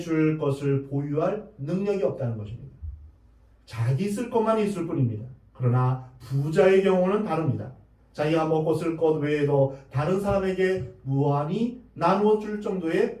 것을 보유할 능력이 없다는 것입니다. 자기 쓸 것만 있을 뿐입니다. 그러나 부자의 경우는 다릅니다. 자기가 먹고 쓸 것 외에도 다른 사람에게 무한히 나누어 줄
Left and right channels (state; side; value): identical; both; correlation 1.00